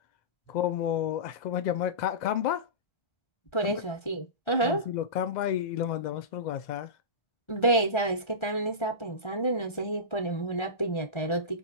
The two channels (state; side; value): late; right; 1.3 ms